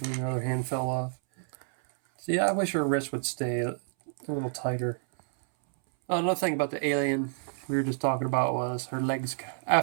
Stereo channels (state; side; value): silent; left; 59 dB below the other